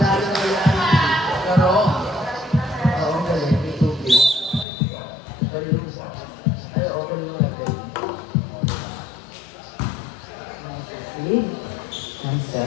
na kaya? Pero, oo, galing. May tubig. Galing. Ay, oo, galing na galing. Nice. Nice set.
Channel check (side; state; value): right; drops out; at 4.7 s